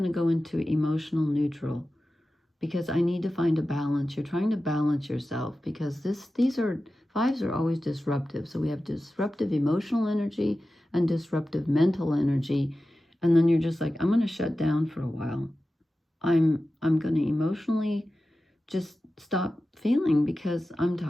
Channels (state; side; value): normal; both; correlation 0.94